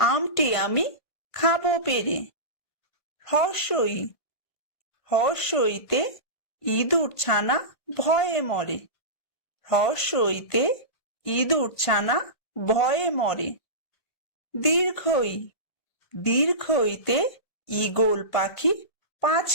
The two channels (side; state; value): right; late; 1.6 ms